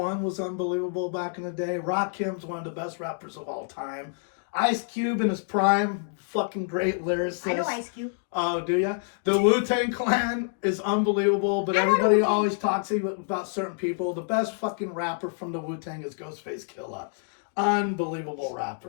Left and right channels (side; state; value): right; silent; digital silence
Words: was unbelievable back in the day. Rakim's one of the best rappers of all time. Ice Cube in his prime, fucking great lyricist. I know Ice Cube. Oh, do ya? The Wu-Tang Clan is unbelievable, but everybody always talks about certain people. The best fucking rapper from the Wu-Tang is Ghostface Killah. Unbelievable